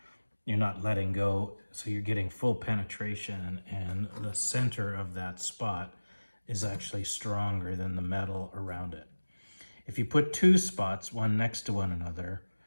you're not letting go, so you're getting full penetration, and the center of that spot is actually stronger than the metal around it. If you put 2 spots, one next to one another,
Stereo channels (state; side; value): inverted; both; correlation -1.00